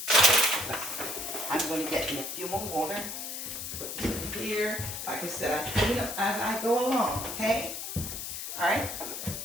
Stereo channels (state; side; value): noise; left; hiss, 6 dB below the sound